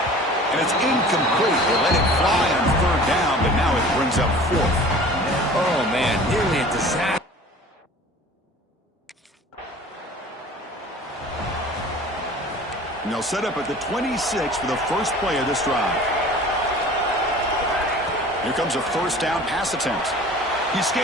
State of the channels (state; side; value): normal; both; correlation 0.44